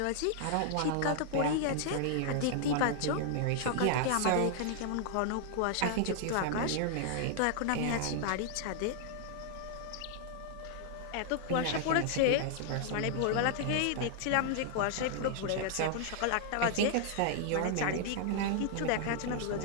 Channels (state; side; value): different; both; correlation -0.01